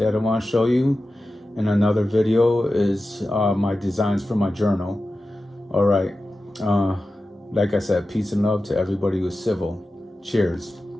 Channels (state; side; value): normal; both; correlation 0.93